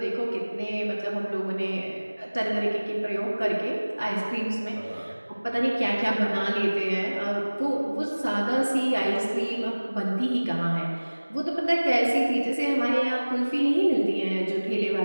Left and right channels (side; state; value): both; inverted; correlation -1.00